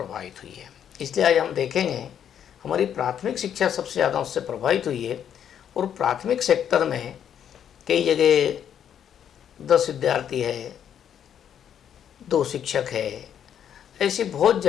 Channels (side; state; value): right; quieter; 9.1 dB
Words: हुई है। इसलिए आज हम देखेंगे हमारी प्राथमिक शिक्षा सबसे ज़्यादा उससे प्रभावित हुई है और प्राथमिक सेक्टर में कई जगह 10 विद्यार्थी है, 2 शिक्षक है, ऐसी बहुत